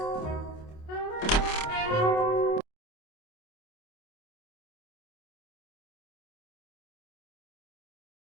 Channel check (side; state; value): right; late; 27 ms